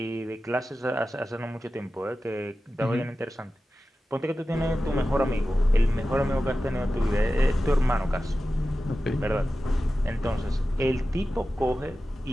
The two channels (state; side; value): normal; both; correlation 0.94